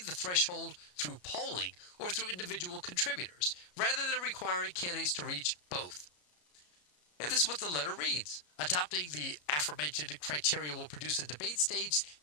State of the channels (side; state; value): right; late; 33 ms